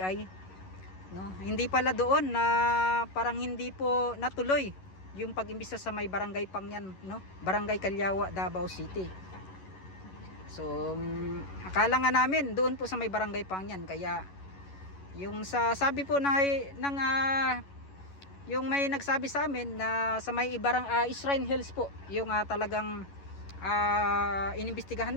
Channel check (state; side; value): late; right; 11 ms